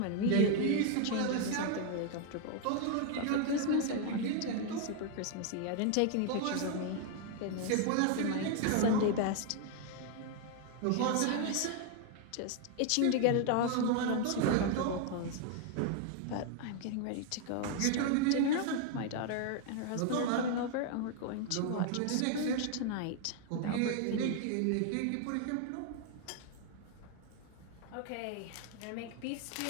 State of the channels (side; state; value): both; different; correlation 0.00